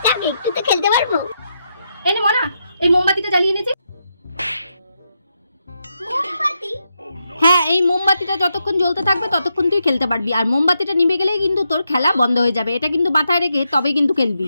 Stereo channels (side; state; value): both; inverted; correlation -0.83